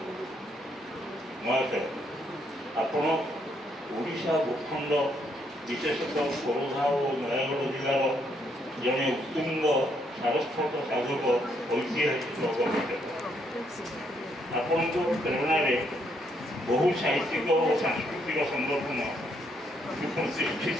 ମହାଶୟ, ଆପଣ ଓଡ଼ିଶା ଭୂଖଣ୍ଡ ବିଶେଷତଃ ଖୋର୍ଦ୍ଧା ଓ ନୟାଗଡ଼ ଜିଲ୍ଲାର ଜଣେ ଉତ୍ତୁଙ୍ଗ ସାରସ୍ୱତ ସାଧକ ଐତିହାସିକ ଗବେଷକ। ଆପଣଙ୍କ ପ୍ରେରଣାରେ ବହୁ ସାହିତ୍ୟିକ ଓ ସାଂସ୍କୃତିକ ସଂଗଠନ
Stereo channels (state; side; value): normal; both; correlation 0.73